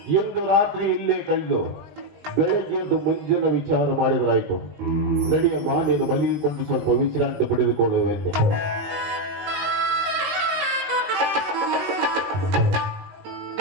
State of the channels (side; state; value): left; late; 20 ms